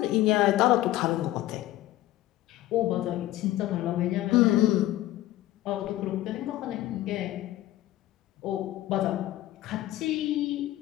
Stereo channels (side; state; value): right; quieter; 15.4 dB